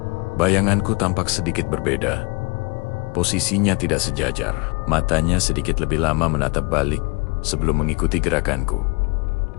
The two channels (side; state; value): right; quieter; 29.4 dB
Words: bayanganku tampak sedikit berbeda. Posisinya tidak sejajar. Matanya sedikit lebih lama menatap balik sebelum mengikuti gerakanku.